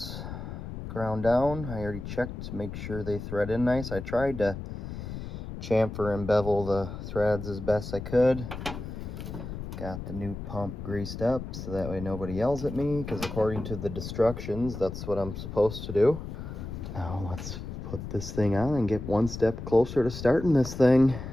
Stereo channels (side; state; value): left; noise; rumble, 8 dB below the sound